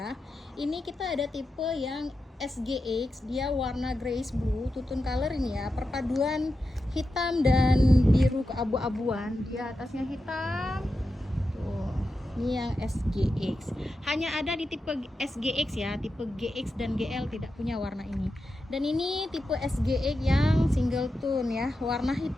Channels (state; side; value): normal; both; correlation 0.89